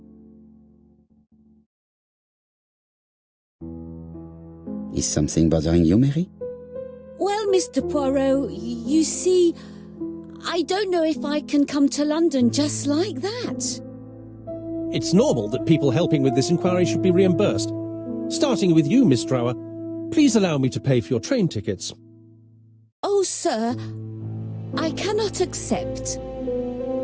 Is something bothering you, Mary? Well, Mr. Poirot, you see, I don't know if I can come to London just like that. It's normal that people helping with this inquiry should be reimbursed. Starting with you, Miss Drower. Please allow me to pay for your train tickets. Oh, sir, I cannot accept.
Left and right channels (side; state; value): both; identical; correlation 1.00